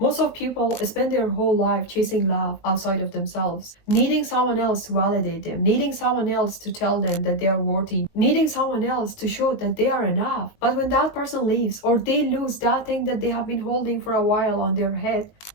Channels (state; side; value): late; right; 19 ms